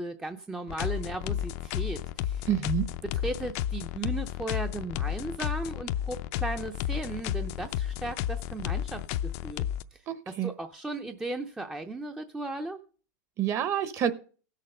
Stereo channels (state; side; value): normal; both; correlation 0.28